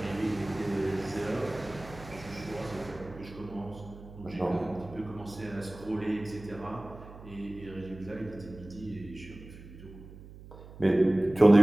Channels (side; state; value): right; noise; hum, 17 dB below the sound